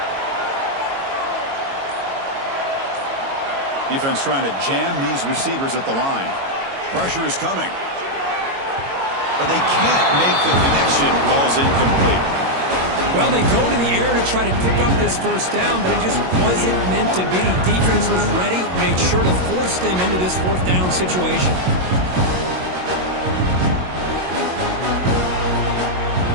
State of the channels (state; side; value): late; left; 22 ms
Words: Defense trying to jam these receivers at the line. Pressure is coming. But they can't make the connection. Ball's incomplete. Well, they go to the air to try to pick up this first down, but it just wasn't meant to be. Defense was ready, made sure to force them into this fourth down situation.